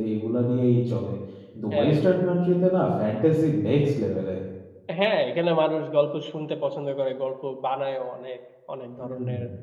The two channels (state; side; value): identical; both; correlation 1.00